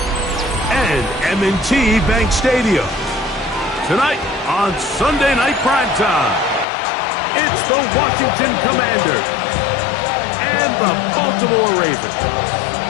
and M&T Bank Stadium. Tonight on Sunday Night Primetime, it's the Washington Commanders and the Baltimore Ravens.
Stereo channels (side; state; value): right; drops out; at 6.7 s